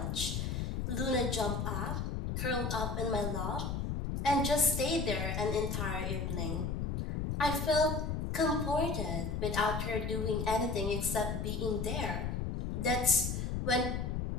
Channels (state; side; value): noise; left; rumble, 1 dB below the sound